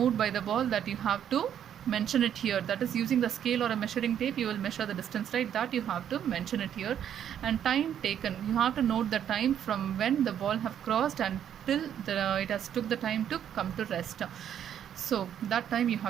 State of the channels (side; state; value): left; quieter; 9.6 dB